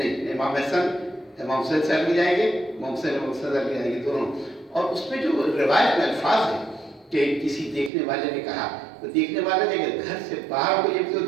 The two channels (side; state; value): left; drops out; at 7.9 s